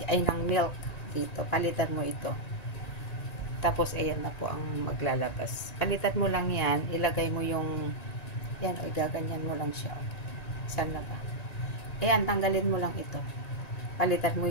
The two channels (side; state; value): right; late; 1.9 ms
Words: ay ng milk dito. Palitan mo ito. Tapos, ayan na po ang maglalabas. Palitan mo lang yan, ilagay mo yung, yan, o gaganyan mo lang siya. Saan na ba? Ayan, tanggalin mo lang ito. Palitan